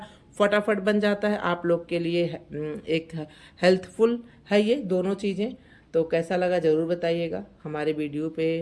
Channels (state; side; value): identical; both; correlation 1.00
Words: फटाफट बन जाता है आप लोग के लिए। एक हेल्थफुल है ये दोनों चीज़ें। तो कैसा लगा ज़रूर बताइएगा। हमारे वीडियो पे